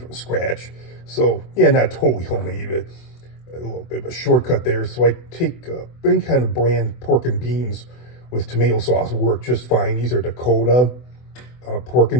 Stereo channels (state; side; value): late; right; 24 ms